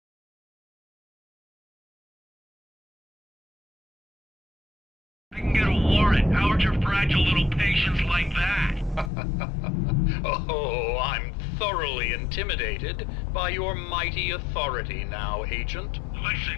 I can get a warrant. How would your fragile little patients like that? Oh, I'm thoroughly intimidated by your mighty authority now, Agent.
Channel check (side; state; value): right; drops out; at 9.1 s